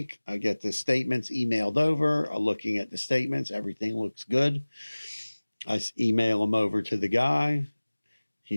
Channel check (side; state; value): both; inverted; correlation -1.00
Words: I get the statements emailed over. I'm looking at the statements, everything looks good. I email them over to the guy.